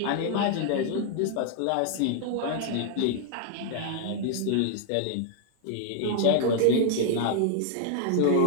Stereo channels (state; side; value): different; both; correlation 0.00